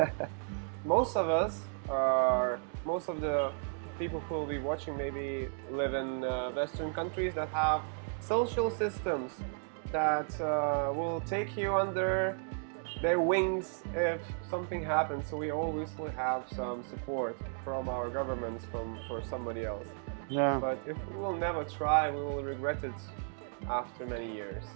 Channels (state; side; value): silent; left; 55 dB below the other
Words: Most of us, or most of the people who will be watching, maybe live in Western countries that have social systems that will take you under their wings if something happens. So we always will have some support from our governments, for somebody else. Yeah. But if we will never try, we will regret it after many years.